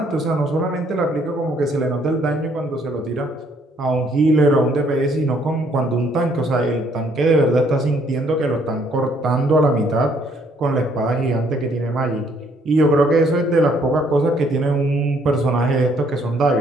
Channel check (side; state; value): both; normal; correlation 0.66